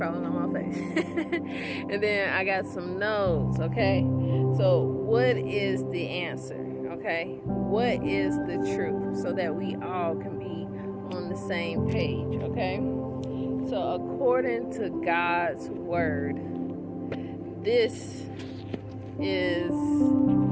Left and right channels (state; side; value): identical; both; correlation 1.00